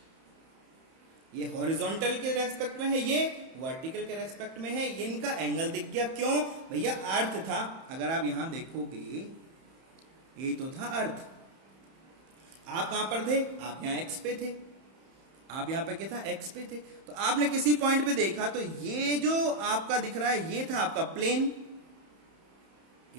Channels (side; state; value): left; late; 31 ms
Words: ये हॉरिजॉन्टल के रेस्पेक्ट में है, ये वर्टिकल के रेस्पेक्ट में है। ये इनका एंगल दिख गया, क्यों भैया, अर्थ था। अगर आप यहां देखोगे, यही तो था अर्थ। आप कहां पर थे, आप यहां एक्स पे थे, आप यहां पे क्या था, एक्स पे थे। तो आपने किसी पॉइंट पे देखा, तो ये जो आपका दिख रहा है, ये था आपका प्लेन।